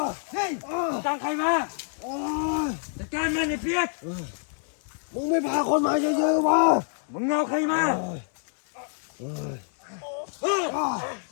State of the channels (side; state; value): right; silent; 60 dB below the other